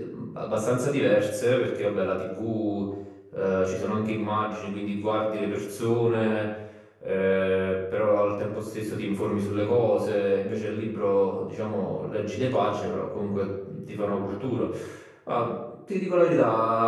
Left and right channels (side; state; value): both; identical; correlation 1.00